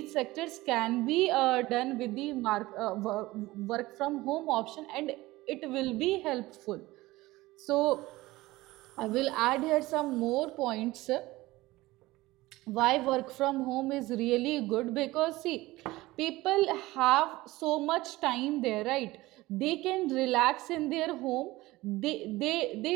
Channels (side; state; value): left; quieter; 19.0 dB